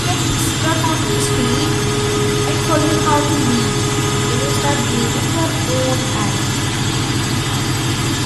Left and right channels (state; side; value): identical; both; correlation 1.00